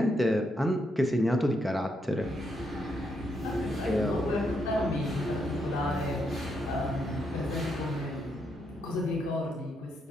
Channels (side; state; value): both; normal; correlation 0.79